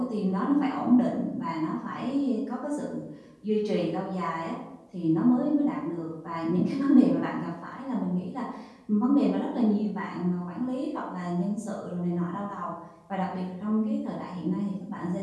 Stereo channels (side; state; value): both; identical; correlation 1.00